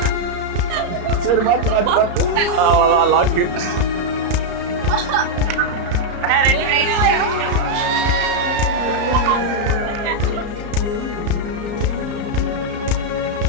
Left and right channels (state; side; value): late; left; 34 ms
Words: சரி, மாத்து அவ்வளோதான் லாக்கு.